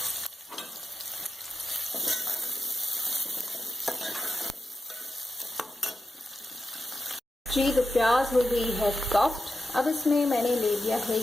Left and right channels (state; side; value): normal; both; correlation 0.89